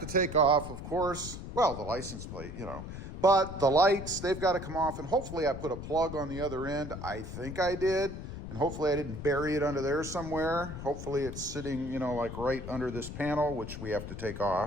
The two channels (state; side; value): noise; left; rumble, 9 dB below the sound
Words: take off, of course, well, the license plate, but the lights, they've got to come off, and hopefully I put a plug on the other end. I think I did, and hopefully I didn't bury it under there somewhere. Hopefully it's sitting, like right under this panel, which we have to take